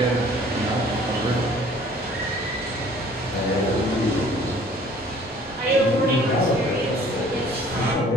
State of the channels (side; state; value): both; normal; correlation 0.54